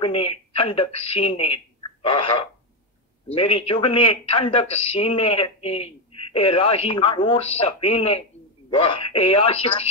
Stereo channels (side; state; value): both; normal; correlation 0.08